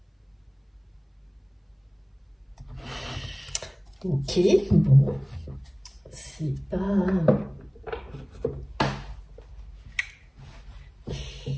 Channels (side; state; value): both; identical; correlation 1.00